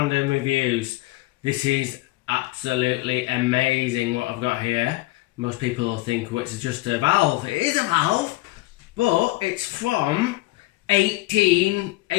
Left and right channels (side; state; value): right; quieter; 20.2 dB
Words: Reviews. This is absolutely amazing what I've got here. Most people will think, well, it's just a valve. It is a valve, but it's from